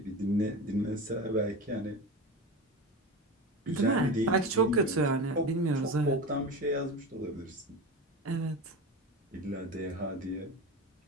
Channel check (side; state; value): both; normal; correlation 0.26